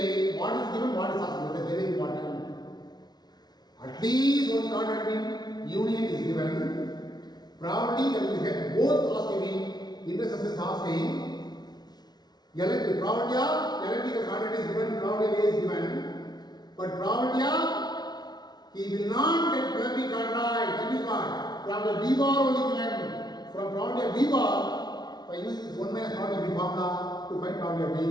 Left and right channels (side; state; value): right; late; 0.19 ms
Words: what is given, what is asked. That is very important. At least one contract union is given. Probability that we get both asking, intersection is asking. Probability of electrical contract is given, probability A is given. But probability of he will not get plumbing contract. That is what? Probability of B bar only given. From probability of B bar, by using this 1 minus probability of B formula to find probability of B,